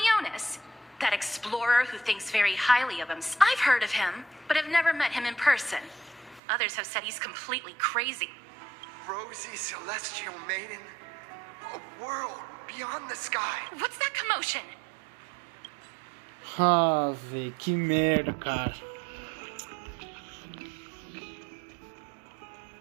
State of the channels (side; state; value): left; drops out; at 6.4 s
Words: that explorer who thinks very highly of him. I've heard of him, but have never met him in person. Others have said he's completely crazy. Rosy Celestial Maiden, a world beyond the sky. What's that commotion? Ah, velho, que merda, cara.